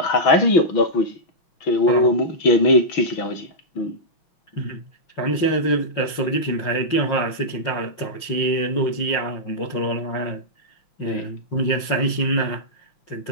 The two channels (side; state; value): right; late; 5.6 ms